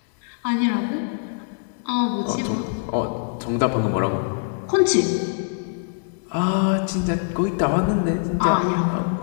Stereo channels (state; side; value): silent; right; digital silence